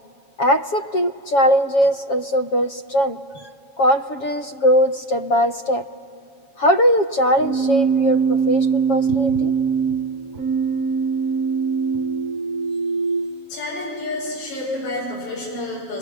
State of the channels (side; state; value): right; late; 7.3 ms